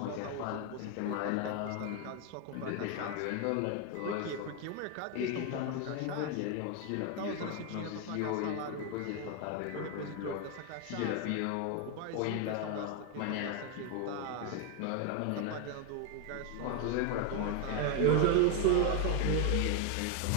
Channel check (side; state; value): both; different; correlation 0.01